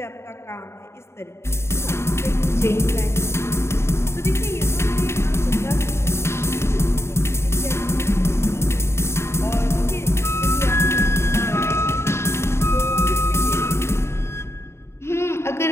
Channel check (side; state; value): right; late; 0.13 ms